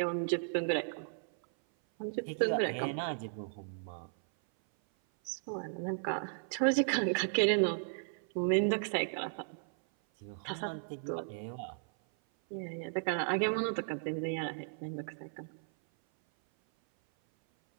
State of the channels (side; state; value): left; silent; 54 dB below the other